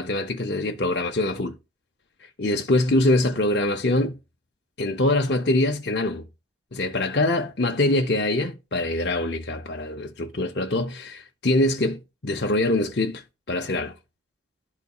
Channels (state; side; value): normal; both; correlation 0.34